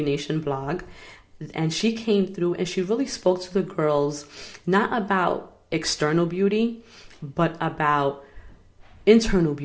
Nation blog. And she came through and she really spoke to the girls, not about external beauty, but about internal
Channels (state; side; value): identical; both; correlation 1.00